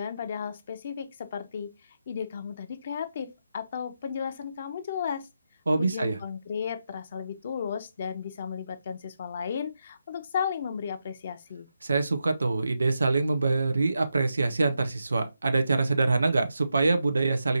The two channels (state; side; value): inverted; both; correlation -0.86